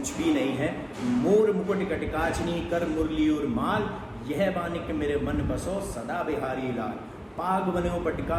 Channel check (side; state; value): both; identical; correlation 1.00